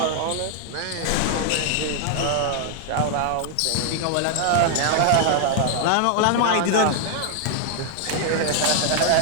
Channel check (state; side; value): different; both; correlation 0.00